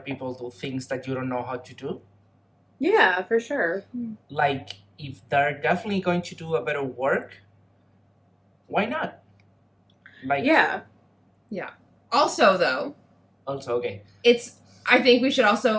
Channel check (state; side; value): identical; both; correlation 1.00